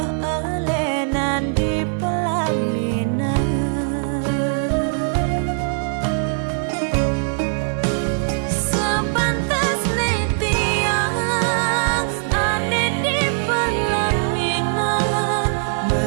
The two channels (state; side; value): silent; left; digital silence